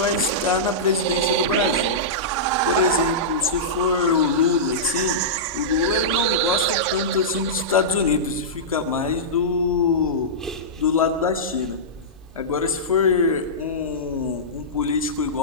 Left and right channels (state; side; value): normal; both; correlation -0.15